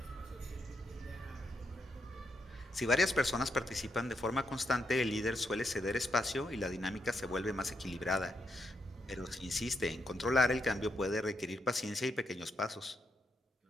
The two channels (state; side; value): normal; both; correlation 0.80